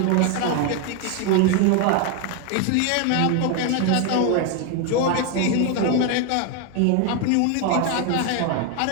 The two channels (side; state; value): both; different; correlation 0.01